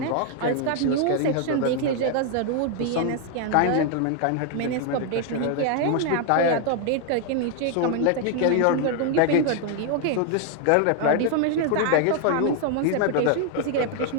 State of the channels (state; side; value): different; both; correlation 0.00